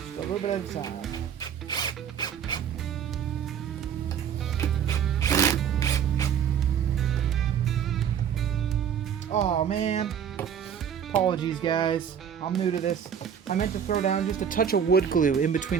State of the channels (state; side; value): quieter; left; 8.2 dB